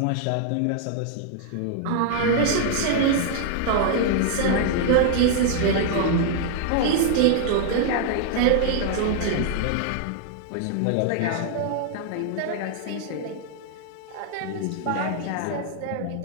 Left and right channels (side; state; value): both; different; correlation 0.00